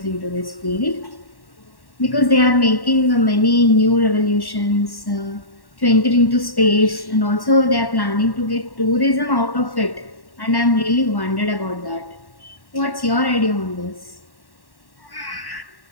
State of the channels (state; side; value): late; right; 1.1 ms